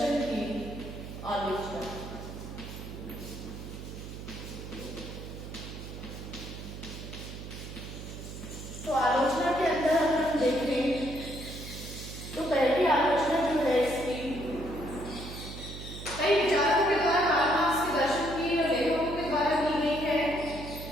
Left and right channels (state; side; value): noise; right; hum, 10 dB below the sound